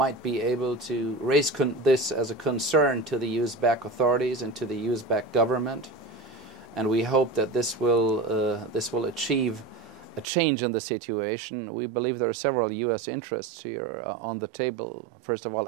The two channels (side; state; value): left; drops out; at 10.2 s